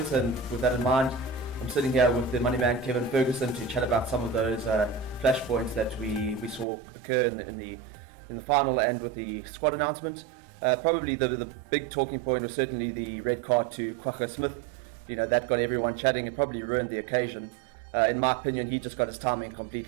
and with that in mind, I'm sitting here with the money man Kevin Ferguson to chat about some of those flashpoints that we saw occur in the final and with the squad announcement. Probably the big talking point was certainly the red card to Kwagga Smith. You know, that got everyone chatting and probably ruined the occasion. In my opinion, he just got his timing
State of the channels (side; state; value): left; drops out; at 6.7 s